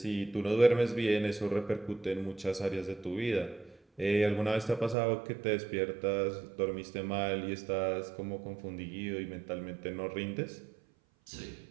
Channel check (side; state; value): left; drops out; at 5.0 s